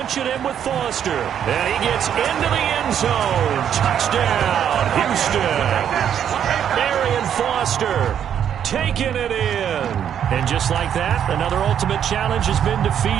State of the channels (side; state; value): left; quieter; 9.1 dB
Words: it in with Foster. And he gets into the end zone. Touchdown, Houston. Arian Foster taking it in. And just like that, another ultimate challenge has been